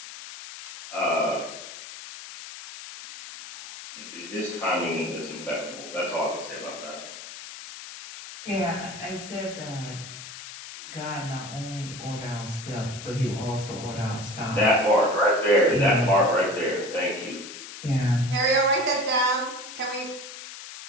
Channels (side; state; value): left; noise; hiss, 12 dB below the sound